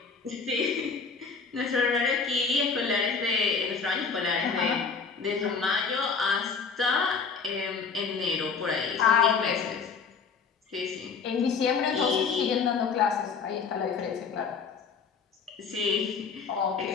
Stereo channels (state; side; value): quieter; right; 5.4 dB